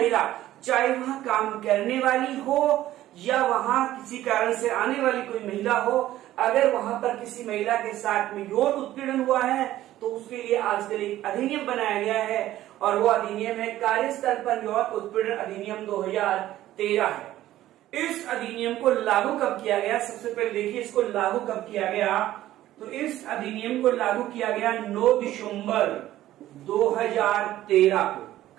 चाहे वहां काम करने वाली हो या वहां किसी कारण से आने वाली कोई महिला हो, अगर वहां पर किसी महिला के साथ में यौन उत्पीड़न हुआ है तो उसके लिए आजकल एक अधिनियम बनाया गया है और वो अधिनियम है कार्यस्थल पर यौन उत्पीड़न अधिनियम 2013 है। इस अधिनियम को लागू कब किया गया? सबसे पहले देखिए इसको लागू कब किया गया। तो इस अधिनियम को लागू किया गया 9 दिसंबर 2013 को।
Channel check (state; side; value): quieter; left; 14.1 dB